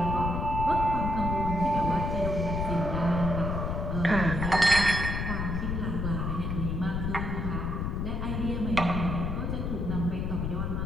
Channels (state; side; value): noise; left; rumble, 1 dB below the sound